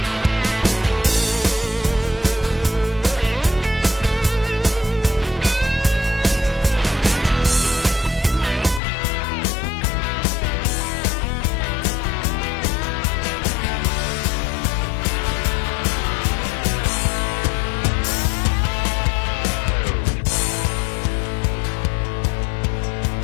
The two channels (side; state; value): right; drops out; at 8.8 s